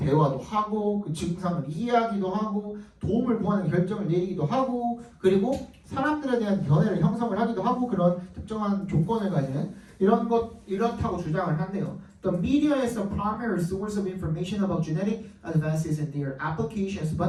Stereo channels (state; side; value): identical; both; correlation 1.00